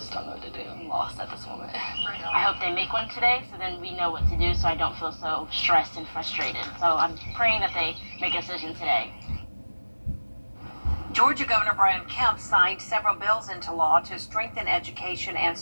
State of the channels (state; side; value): inverted; both; correlation -1.00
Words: don't know what to do. I'm lost at this moment. I hope they make one today, so then we know what to do, so I don't feel so stressed and frustrated. So I'm praying that they make a decision today. Georgia Governor Brian Kemp signed several bills into law to strengthen education and